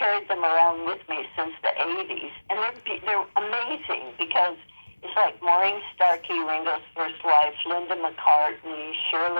them around with me since the 80s. And they're amazing because it's like Maureen Starkey, Ringo's first wife, Linda McCartney,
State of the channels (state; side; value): inverted; both; correlation -1.00